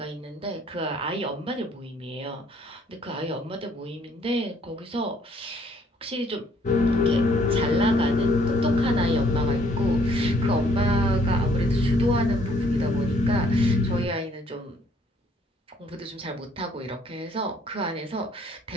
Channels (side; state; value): both; normal; correlation 0.63